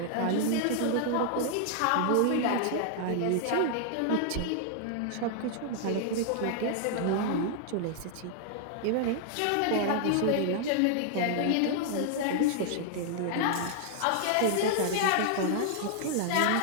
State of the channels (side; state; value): both; different; correlation 0.00